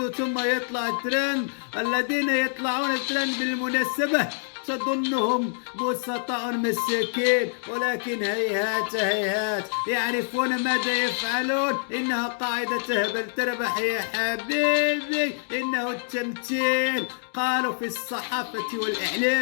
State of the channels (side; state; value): right; silent; digital silence